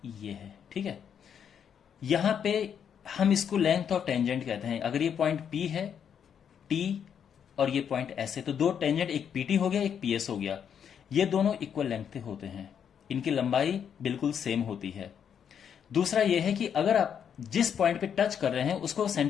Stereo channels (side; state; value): right; quieter; 8.1 dB